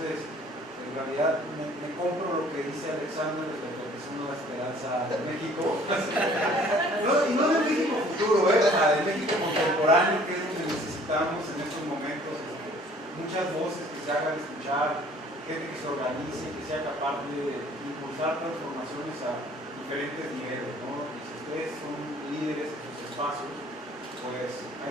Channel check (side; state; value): both; normal; correlation 0.54